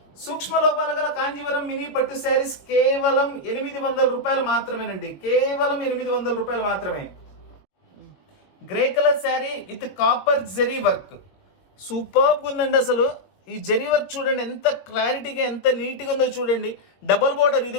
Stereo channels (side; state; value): right; late; 21 ms